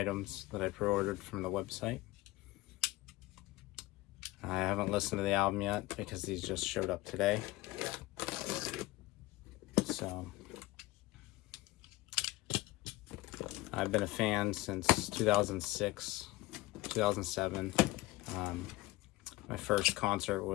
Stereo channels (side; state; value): right; quieter; 18.9 dB